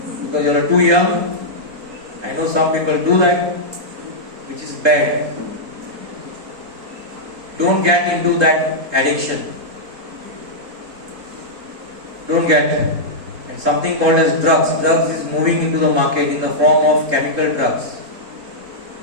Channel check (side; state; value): left; late; 3.7 ms